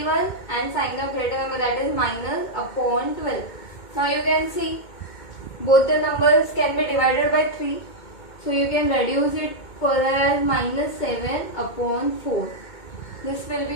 and sign of greater number, that is minus upon 12. Now you can see both the numbers can be divided by 3, so you can reduce it further as minus 7 upon 4. This will be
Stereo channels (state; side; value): late; right; 2.2 ms